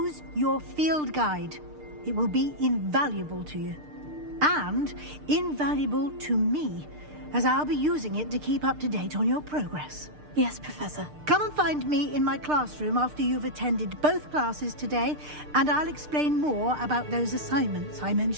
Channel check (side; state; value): left; late; 6.6 ms